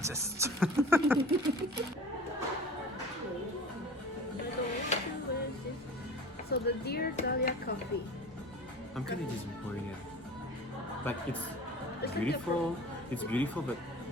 So the Dear Dahlia coffee. I'm kind of disappointed. Like it's It's beautiful. It's beautiful, but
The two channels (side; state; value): both; normal; correlation 0.39